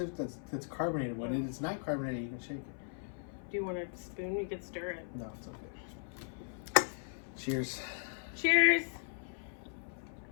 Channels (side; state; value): right; silent; 53 dB below the other